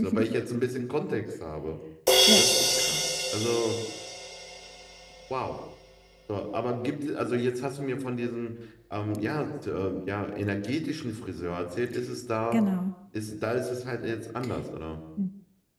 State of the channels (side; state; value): both; identical; correlation 1.00